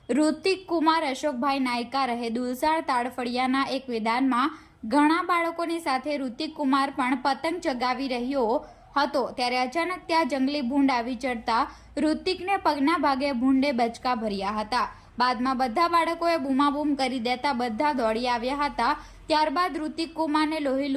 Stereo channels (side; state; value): both; identical; correlation 1.00